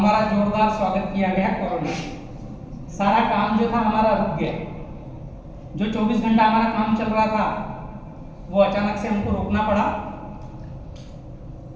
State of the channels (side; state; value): both; identical; correlation 1.00